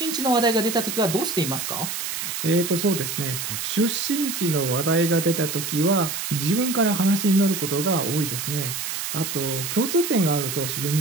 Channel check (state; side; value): noise; right; hiss, 4 dB below the sound